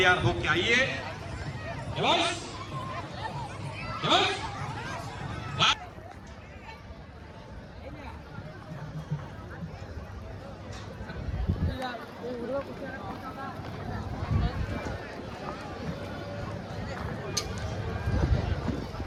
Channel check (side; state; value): both; identical; correlation 1.00